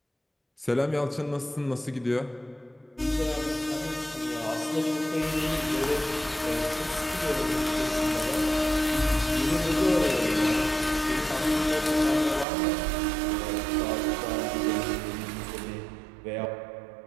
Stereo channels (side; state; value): left; drops out; at 12.5 s